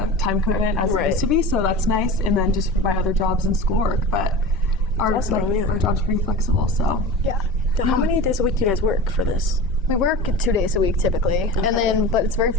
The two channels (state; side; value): normal; both; correlation 0.33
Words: time commitment as it used to be. So that's nice. And then just my other jobs and schoolwork, but our our job's pretty flexible. So yeah. So how many days a week do you guys work for this? We work 2 days a week typically, and but it's very